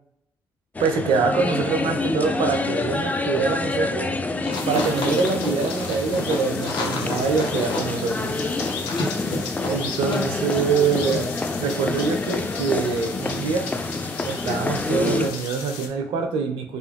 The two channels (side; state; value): both; normal; correlation 0.55